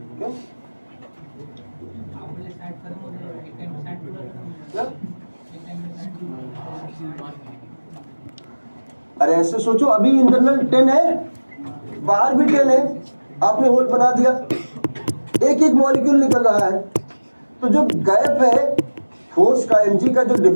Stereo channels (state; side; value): inverted; both; correlation -1.00